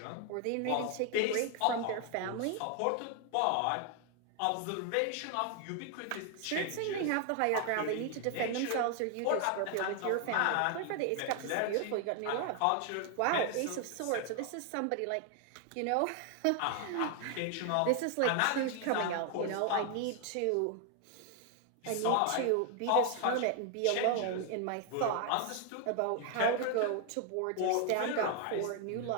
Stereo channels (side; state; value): both; different; correlation 0.00